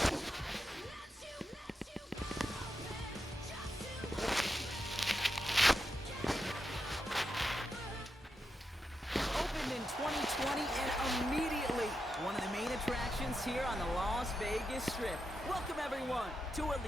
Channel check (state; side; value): normal; both; correlation 0.87